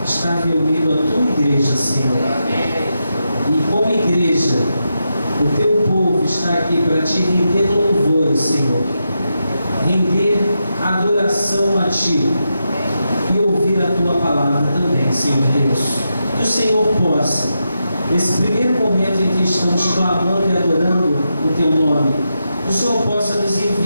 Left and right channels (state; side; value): inverted; both; correlation -0.86